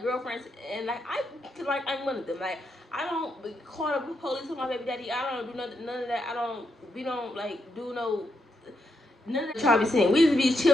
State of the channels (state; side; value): normal; both; correlation 0.81